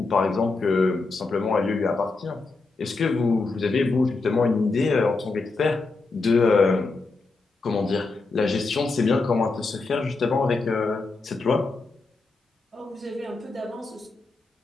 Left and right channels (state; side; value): quieter; right; 3.7 dB